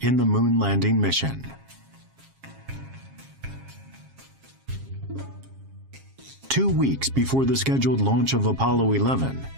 in the moon landing mission. Two weeks before the scheduled launch of Apollo 11,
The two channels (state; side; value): late; left; 7.4 ms